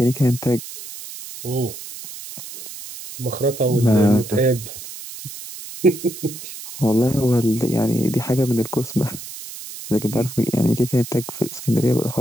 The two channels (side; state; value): right; noise; hiss, 12 dB below the sound